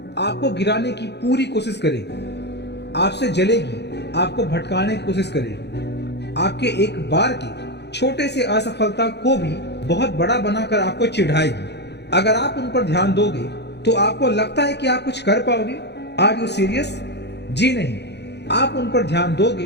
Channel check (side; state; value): right; late; 0.49 ms